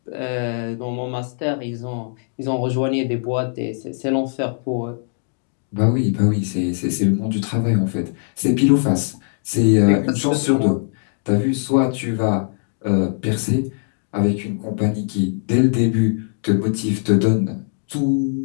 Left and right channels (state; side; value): silent; right; digital silence